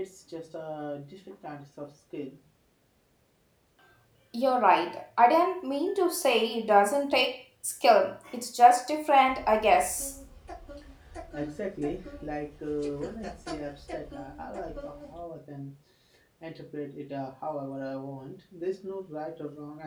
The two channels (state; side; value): identical; both; correlation 1.00